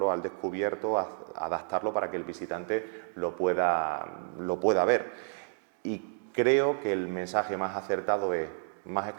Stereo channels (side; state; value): left; silent; 57 dB below the other